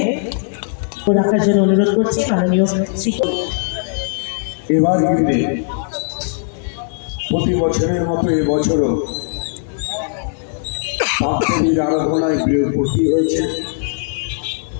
রাখার জন্য অনুরোধ করছি মাননীয় শ্রী। এবার কিন্তু প্রতি বছরের মতো এবছরও পাপদেবীর আরাধনায় ভর্তি হয়েছে।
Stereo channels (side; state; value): right; silent; digital silence